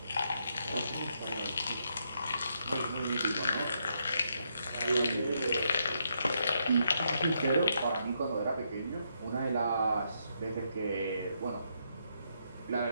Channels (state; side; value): inverted; both; correlation -0.77